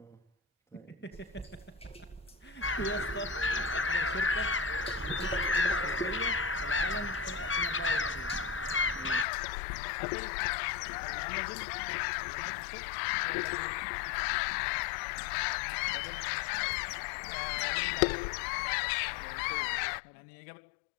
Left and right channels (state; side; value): drops out; right; at 9.2 s